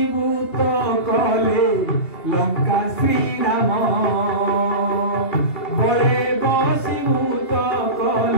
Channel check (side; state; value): right; late; 2.7 ms